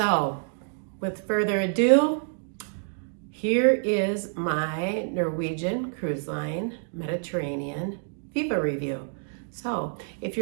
with further ado, here is my Norwegian Cruise Line Mediterranean Viva review. So, if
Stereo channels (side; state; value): left; silent; digital silence